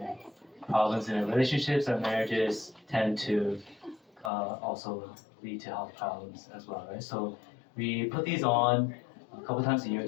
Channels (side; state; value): right; drops out; at 4.3 s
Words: problems in relationships or marriages tend to also lead to health problems as well, right? So we put these on a couple times a year